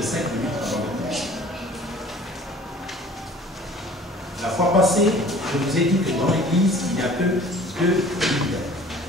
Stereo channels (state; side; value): normal; both; correlation 0.48